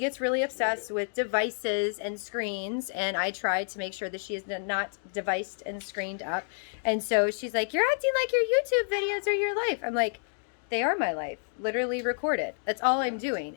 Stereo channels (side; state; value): right; silent; digital silence